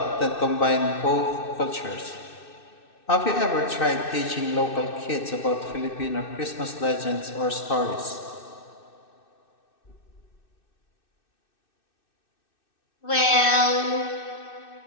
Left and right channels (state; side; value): late; right; 2.6 ms